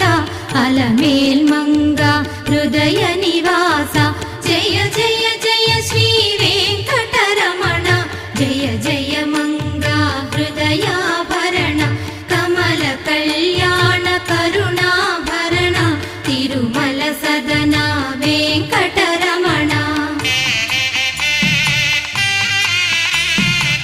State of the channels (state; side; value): identical; both; correlation 1.00